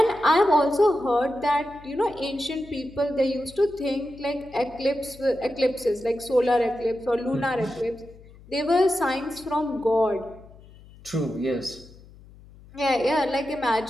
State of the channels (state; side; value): noise; left; hum, 22 dB below the sound